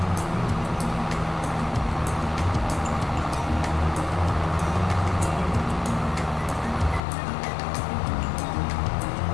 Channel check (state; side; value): drops out; right; at 7.0 s